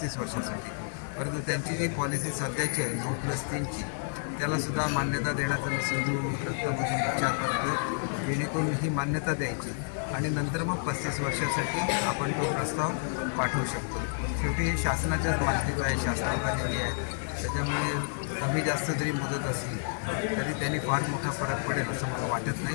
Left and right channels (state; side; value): silent; right; digital silence